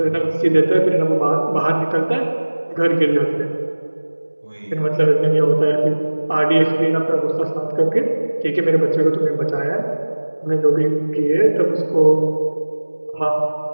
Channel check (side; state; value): both; inverted; correlation -1.00